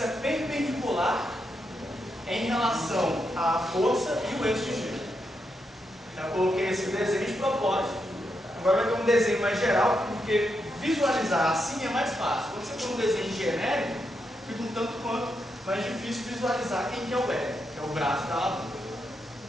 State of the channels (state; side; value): normal; both; correlation 0.83